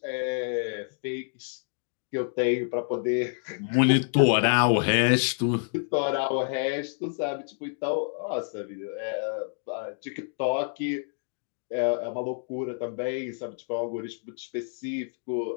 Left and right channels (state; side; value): silent; right; digital silence